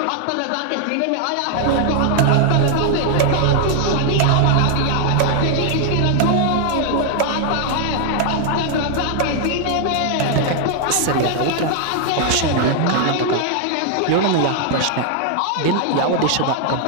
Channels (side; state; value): both; different; correlation 0.00